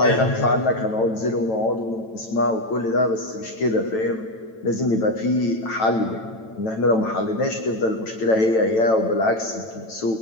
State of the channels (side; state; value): right; late; 9.0 ms